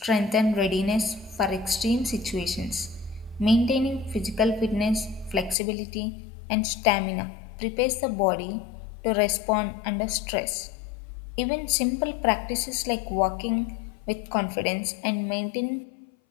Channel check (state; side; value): drops out; right; at 5.6 s